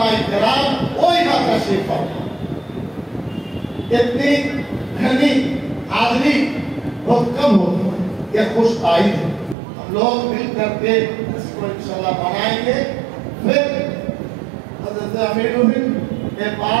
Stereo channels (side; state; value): left; drops out; at 9.6 s